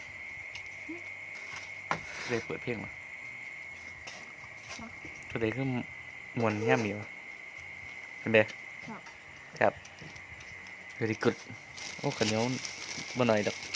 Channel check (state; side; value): identical; both; correlation 1.00